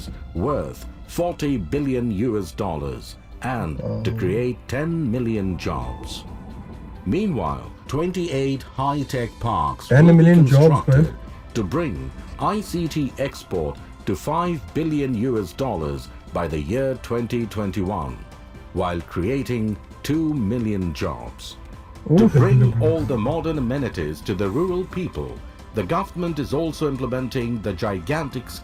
worth $40 billion and to create 10 million jobs. Meanwhile, 28 high-tech parks will be constructed to bring ICT export to $5 billion by the year 2021, while creating 2 million jobs. To bring all the modern amenities to the rural people, the government is also implementing the gigantic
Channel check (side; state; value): both; identical; correlation 1.00